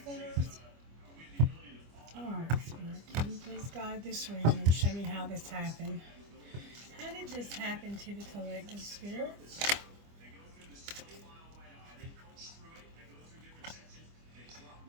centers. Alright, Spirit, can you please guide this reading and show me how this happened? How did this happen to the collective, Spirit?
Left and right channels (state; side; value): late; left; 25 ms